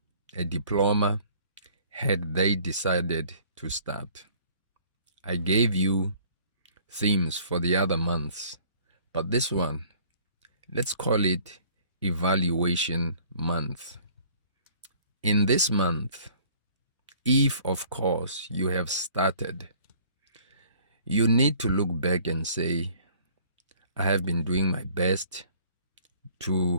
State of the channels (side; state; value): both; inverted; correlation -0.55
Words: a diploma, had they decided to start. I gave you themes for the other months, but this one, let's call it evaluation month. In this month, if of course you have started, you need to look back and say, I have been doing my best